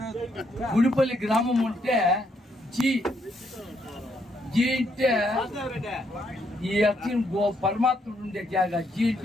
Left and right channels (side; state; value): both; normal; correlation 0.75